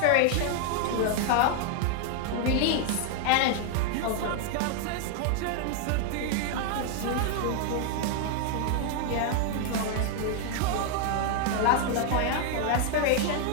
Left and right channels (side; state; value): both; different; correlation 0.00